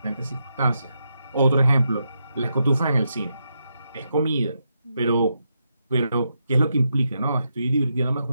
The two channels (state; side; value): inverted; both; correlation -0.83